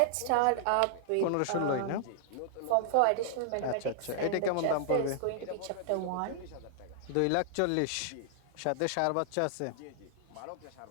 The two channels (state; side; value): different; both; correlation -0.01